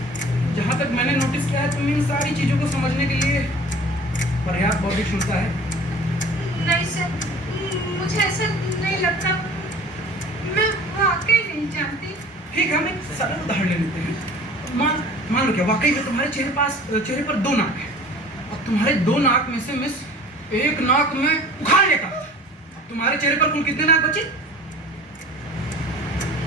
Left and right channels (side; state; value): both; normal; correlation 0.45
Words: जहाँ तक मैंने नोटिस किया है, तुम इन सारी चीज़ों को समझने के लिए पर्याप्त बौद्धिक क्षमता है। नहीं सर, मुझे ऐसा नहीं लगता, मैं वाकई नहीं जानती। ठीक है, हम एक सरल उदाहरण ले लेते हैं। मान लो क्या वाकई में तुम्हारे चेहरे पर 2 नाक है। अब तुम्हारे 2 नाक में से मिस एक नाक में उखाड़ लेता, तुम्हारे चेहरे पर कुल कितने नाक बचे?